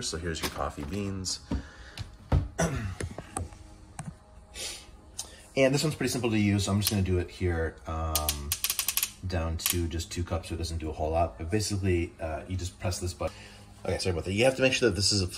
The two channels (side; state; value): both; identical; correlation 1.00